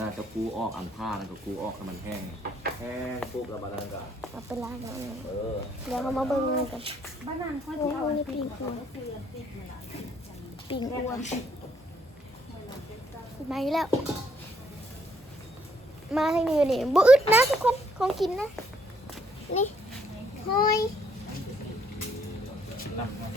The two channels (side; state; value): both; normal; correlation 0.69